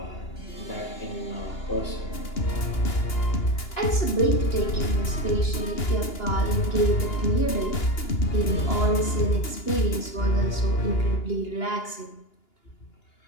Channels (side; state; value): right; late; 2.9 ms